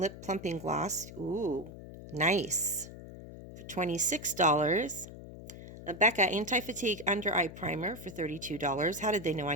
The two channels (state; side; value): noise; left; hum, 14 dB below the sound